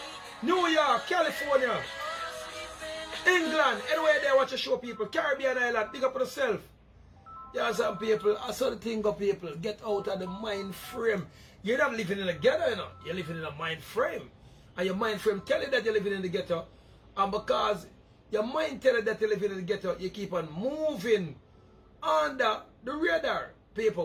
New York, California, England, anywhere there watch a show, people. Caribbean Island, big up yourself. Yeah, some people, I saw the thing of people, get out of the mind frame. You're not living in a ghetto, you know. You're living in a mind frame. And your mind frame tell you that you're living in the ghetto. And because your mind tell you that you're living in the ghetto, you keep on moving under the radar.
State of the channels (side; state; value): both; identical; correlation 1.00